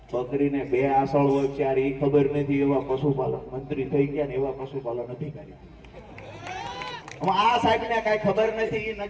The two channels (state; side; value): identical; both; correlation 1.00